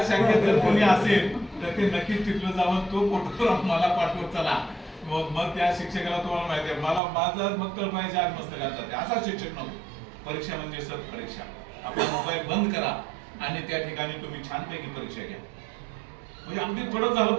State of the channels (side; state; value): left; drops out; at 7.0 s